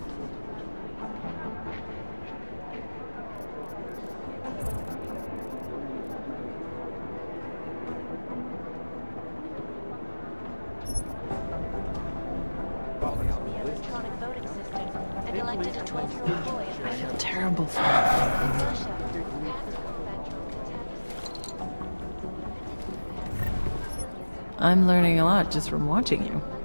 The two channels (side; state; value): both; inverted; correlation -1.00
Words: electronic voting system and elected a 12-year-old boy. I feel terrible for him. Russia. I'm learning a lot just from watching you.